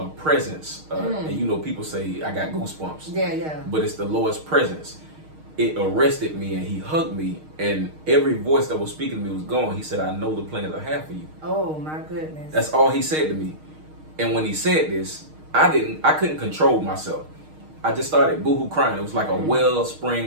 presence. And you know, people say I got goosebumps. Yeah, yeah. But it's the Lord's presence. It arrested me and he hugged me, and every voice that was speaking to me was gone. He said, I know the plans I have for you. Oh my goodness. That's all he said to me. And when he said this, I couldn't control myself. I just started boohoo crying. It was like a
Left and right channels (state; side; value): late; left; 6.5 ms